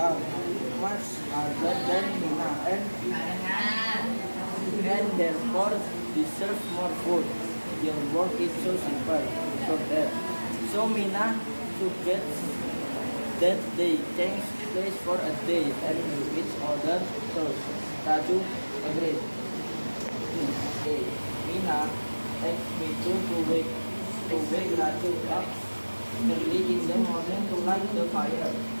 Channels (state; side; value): inverted; both; correlation -1.00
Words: much harder than Mina, and therefore deserves more food. Your work is so simple, so Mina suggests that they change place for a day and do each other chores. Raju agreed. Okay. Mina asked me to wake Raju up early in the morning to light the fire.